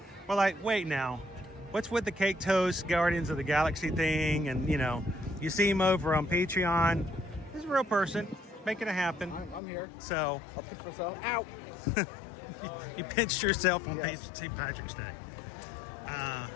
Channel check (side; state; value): right; drops out; at 9.6 s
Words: we're like, wait now, what's with the Cake Toast Guardians of the Galaxy thing? And, you see him over on Patreon. He's a real person, making it happen. I'm here. So, I'll pinch myself. Ow! you pinched yourself on St. Patrick's Day.